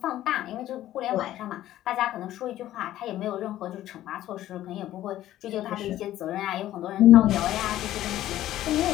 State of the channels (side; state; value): right; quieter; 13.6 dB